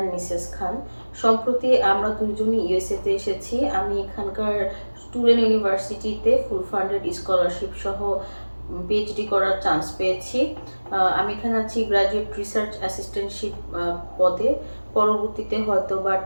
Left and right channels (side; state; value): both; inverted; correlation -1.00